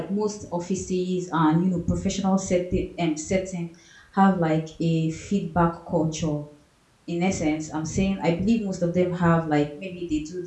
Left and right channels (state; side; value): identical; both; correlation 1.00